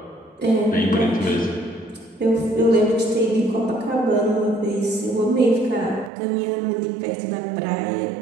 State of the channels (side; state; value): left; drops out; at 6.1 s